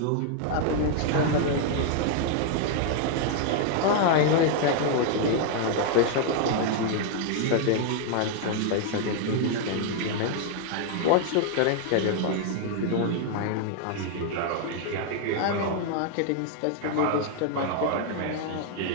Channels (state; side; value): different; both; correlation 0.00